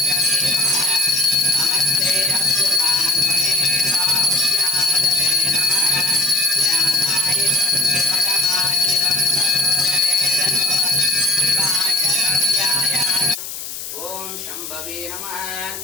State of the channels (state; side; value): noise; left; hiss, 9 dB below the sound